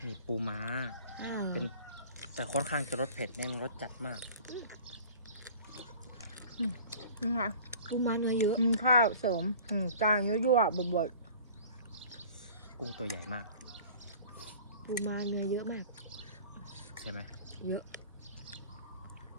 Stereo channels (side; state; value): both; inverted; correlation -0.45